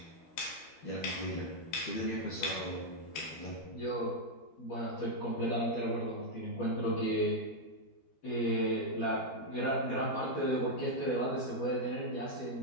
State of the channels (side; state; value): right; late; 13 ms